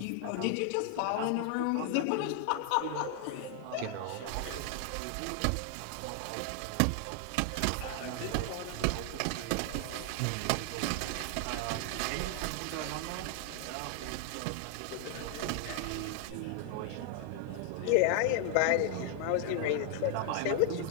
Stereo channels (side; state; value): both; different; correlation 0.00